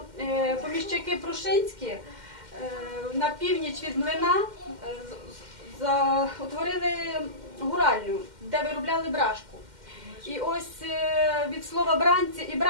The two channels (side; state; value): left; late; 2.1 ms